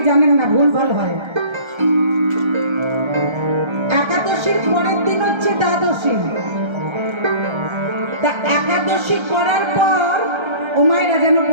জানেন না, ভুল ভাল হয়। একাদশীর পরের দিন হচ্ছে দ্বাদশী। তা একাদশী করার পর ও মায়েরা যেন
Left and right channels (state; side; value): late; left; 1.3 ms